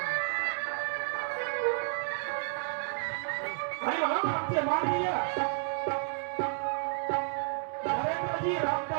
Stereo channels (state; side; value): silent; left; 56 dB below the other